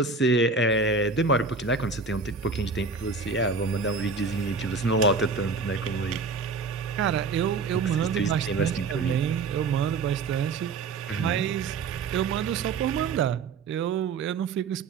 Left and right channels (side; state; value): left; quieter; 4.3 dB